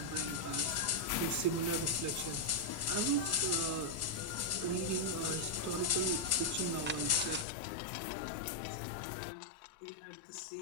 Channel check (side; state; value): right; drops out; at 7.5 s